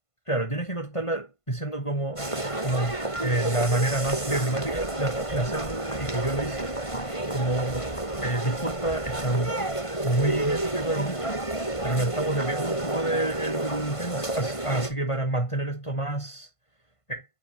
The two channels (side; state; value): right; late; 1.5 ms